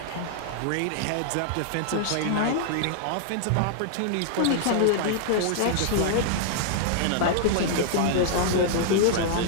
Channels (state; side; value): different; both; correlation -0.01